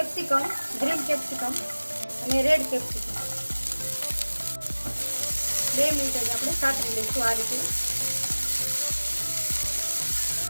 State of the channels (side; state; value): both; inverted; correlation -1.00